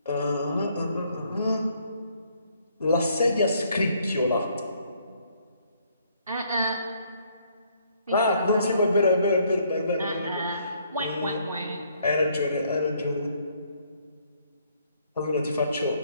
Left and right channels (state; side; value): inverted; both; correlation -0.67